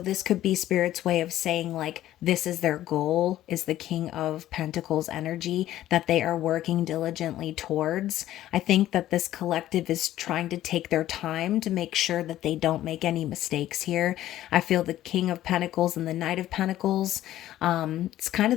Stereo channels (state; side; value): quieter; right; 13.6 dB